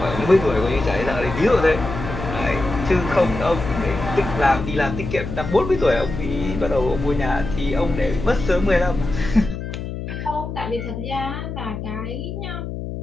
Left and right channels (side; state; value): left; noise; hum, 7 dB below the sound